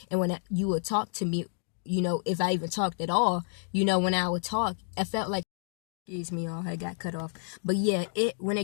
And when you would talk to me, if I even talked at all, when I would talk, I felt like, excuse me, y'all, I got cut off. But yeah, when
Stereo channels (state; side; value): silent; right; digital silence